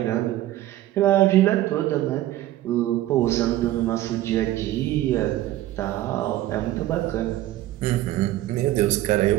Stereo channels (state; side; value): quieter; left; 14.6 dB